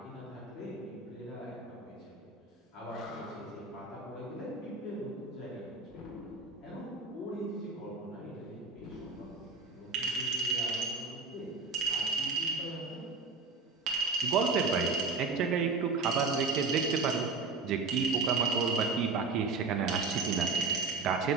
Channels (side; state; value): left; quieter; 4.2 dB